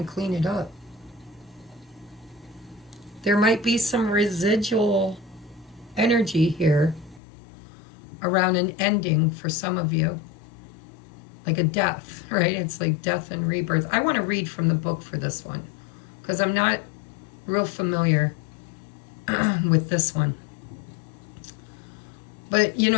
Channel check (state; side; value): drops out; right; at 7.2 s